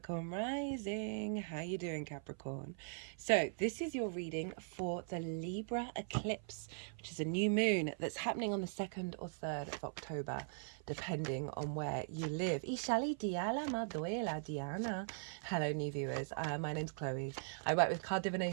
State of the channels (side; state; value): left; silent; 51 dB below the other